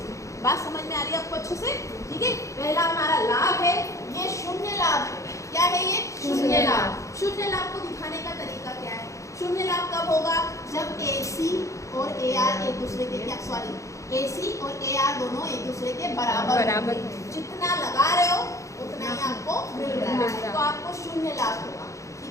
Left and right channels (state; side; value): late; right; 0.15 ms